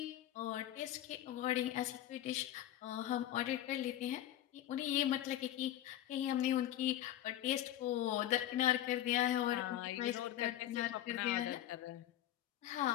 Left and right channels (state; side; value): quieter; right; 12.8 dB